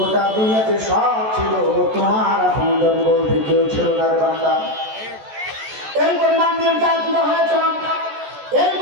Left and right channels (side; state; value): left; late; 14 ms